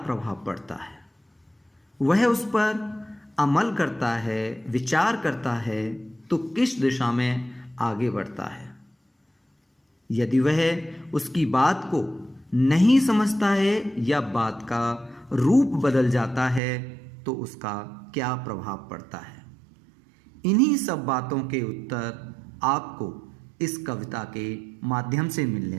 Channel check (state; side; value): drops out; left; at 16.6 s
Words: पड़ता है, वह उस पर अमल करता है, विचार करता है तो किस दिशा में आगे बढ़ता है। यदि वह उसकी बात को नहीं समझता है या बात का रूप बदल जाता है तो उसका क्या प्रभाव पड़ता है। इन्हीं सब बातों के उत्तर आपको इस कविता के माध्यम से